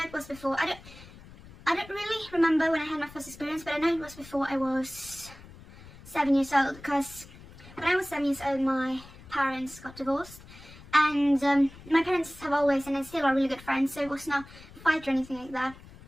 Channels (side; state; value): left; noise; rumble, 19 dB below the sound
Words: it was before, I don't really remember when I had my first experience, but I know it was before I was 7 years old, because when I was 7 years old my parents got divorced. And my parents have always, and they still are really good friends, so it was not a fight or anything like that.